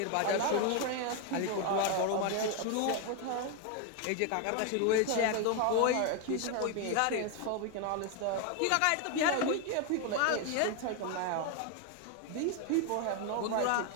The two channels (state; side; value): different; both; correlation 0.01